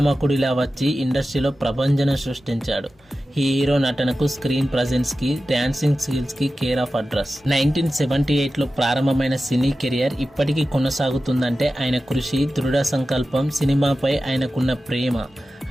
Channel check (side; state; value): both; normal; correlation 0.94